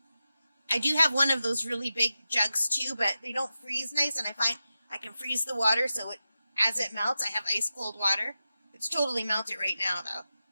I do have one of those really big jugs too, but they don't freeze nice, and I find I can freeze the water, so as it melts, I have ice cold water. It's totally melted right now though.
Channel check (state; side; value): inverted; both; correlation -0.92